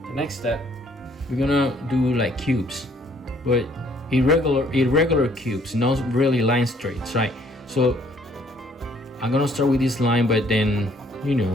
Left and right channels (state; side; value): normal; both; correlation 0.63